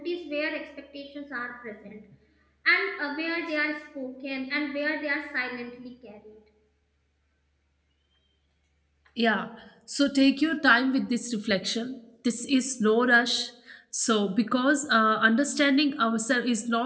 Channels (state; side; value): identical; both; correlation 1.00